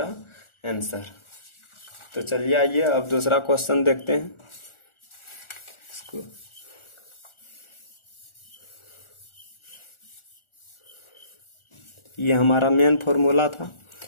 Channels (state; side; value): late; right; 1.4 ms